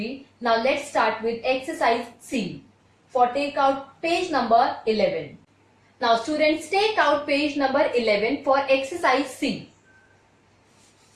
Now let's start with exercise C. For take out page number 11. Now students, take out page number 11 for exercise C.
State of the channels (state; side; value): identical; both; correlation 1.00